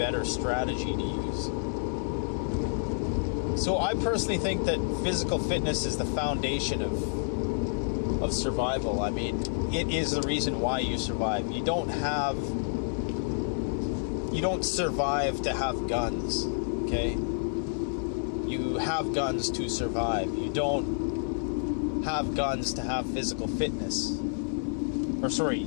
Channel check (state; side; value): silent; right; digital silence